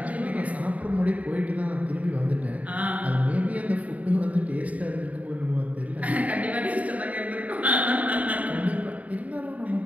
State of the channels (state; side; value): late; left; 0.070 ms